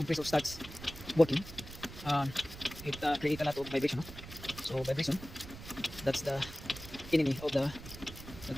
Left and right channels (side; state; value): right; noise; rumble, 14 dB below the sound